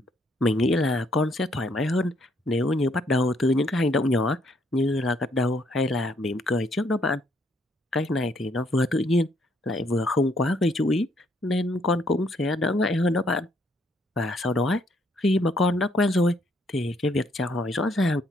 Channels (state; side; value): normal; both; correlation 0.69